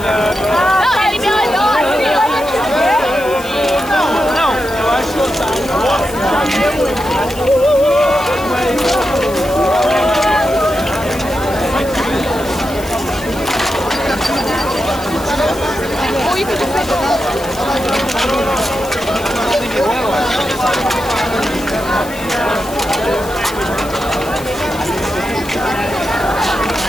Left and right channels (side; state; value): left; noise; hiss, 16 dB below the sound